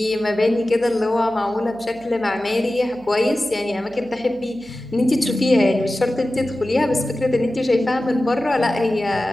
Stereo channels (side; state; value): right; noise; hum, 25 dB below the sound